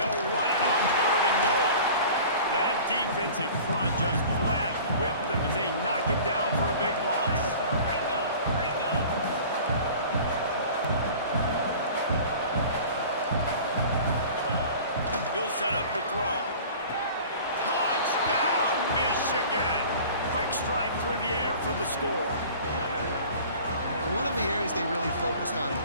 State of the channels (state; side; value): inverted; both; correlation -0.43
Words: run it on third and goal. That defensive front just flat whipped them as they knock him down for a big loss. He'll set up to throw. Touchdown, Michigan! Quick strike through the air for the score. One of the areas they really focused on with